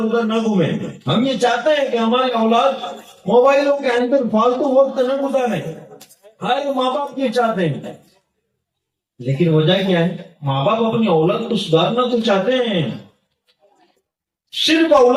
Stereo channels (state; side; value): identical; both; correlation 1.00